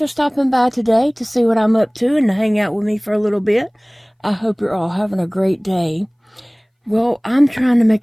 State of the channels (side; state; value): both; identical; correlation 1.00